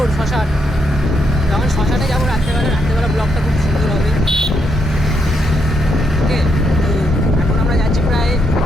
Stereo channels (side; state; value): both; normal; correlation 0.78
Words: শ্মশান। যখন শ্মশানে যাবো রাত্রেবেলা ব্লগটা খুব সুন্দর হবে। ওকে, তো এখন আমরা যাচ্ছি প্রায়